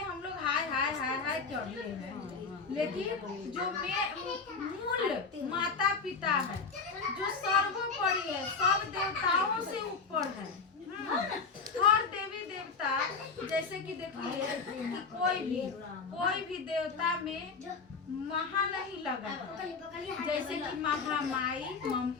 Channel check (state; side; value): quieter; right; 4.9 dB